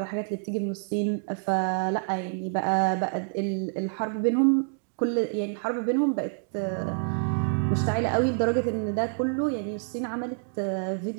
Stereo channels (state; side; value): silent; left; digital silence